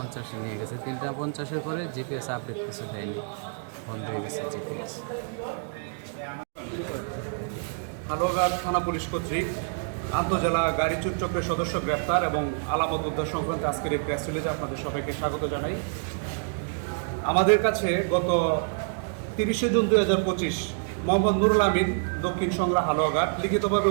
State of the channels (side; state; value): left; silent; 59 dB below the other